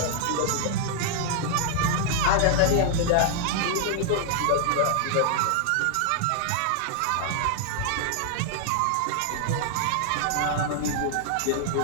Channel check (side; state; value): both; different; correlation 0.00